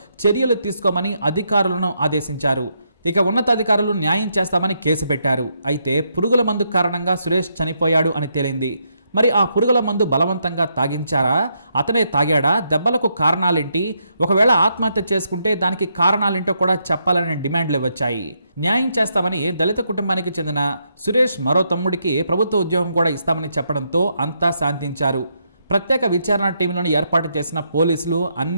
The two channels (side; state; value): both; inverted; correlation -0.79